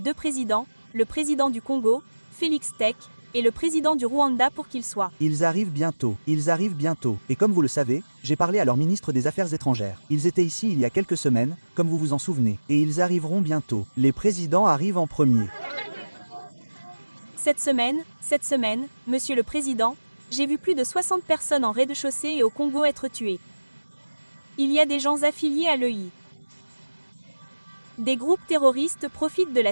présidents, le président du Congo, Félix Tshisekedi, et le président du Rwanda pour qu'ils soient? Ils arrivent bientôt, et comme vous le savez, j'ai parlé à leur ministre des Affaires étrangères. Ils étaient ici il y a quelques semaines, comme vous vous en souvenez, et ils arriveront bientôt. Les présidents arrivent en premier. Cette semaine, Monsieur le Président, j'ai vu plus de 60 personnes en rez-de-chaussée et au Congo être tuées. Il y a des gens affiliés à l'EI. Des groupes terroristes profitent de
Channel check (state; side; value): inverted; both; correlation -1.00